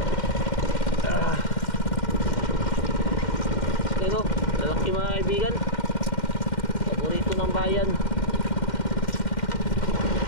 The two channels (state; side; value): late; right; 2.1 ms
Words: Ito, lalaki mga kaibigan. Paborito ng bayan.